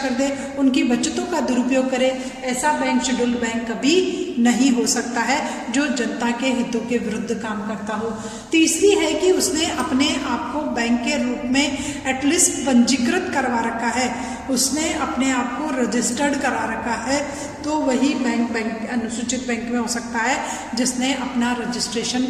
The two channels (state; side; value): identical; both; correlation 1.00